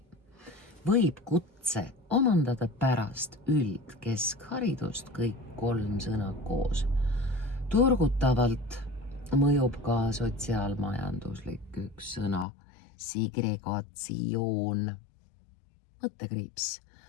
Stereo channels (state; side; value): drops out; right; at 12.5 s